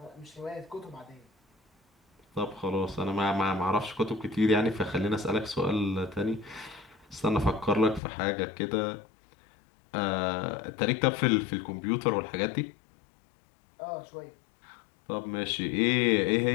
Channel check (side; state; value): right; drops out; at 8.0 s